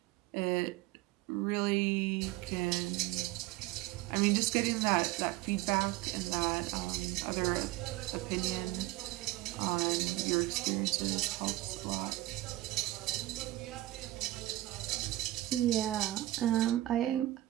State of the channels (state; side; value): quieter; left; 16.8 dB